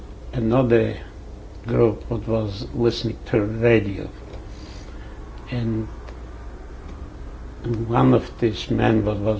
group that was listening to radio, and one of these men that was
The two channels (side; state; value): both; identical; correlation 1.00